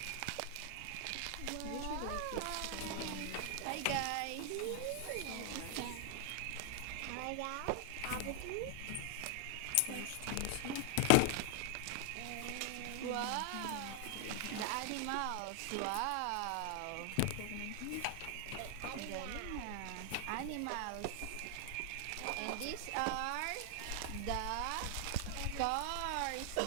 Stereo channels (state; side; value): different; both; correlation 0.00